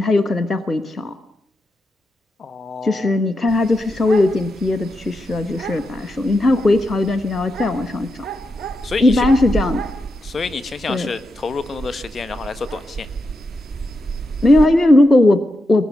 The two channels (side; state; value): both; normal; correlation 0.86